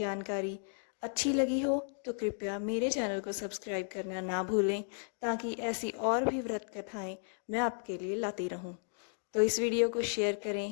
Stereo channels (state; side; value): silent; right; digital silence